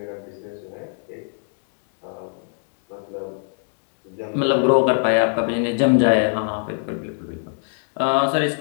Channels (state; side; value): silent; right; digital silence